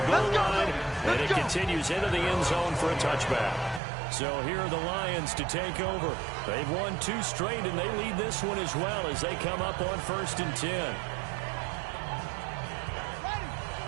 goal line, and it continues into the end zone for a touchback. So here are the Lions to take over. They've won 2 straight, and they lead this one as well as they come up on 1st and 10.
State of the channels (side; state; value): left; drops out; at 3.8 s